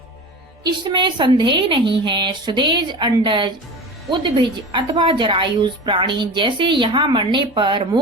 इसमें संदेह नहीं है। सुदेज, अंडज, उद्भिज अथवा जरायुज प्राणी जैसे यहाँ मरने पर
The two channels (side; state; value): both; normal; correlation 0.32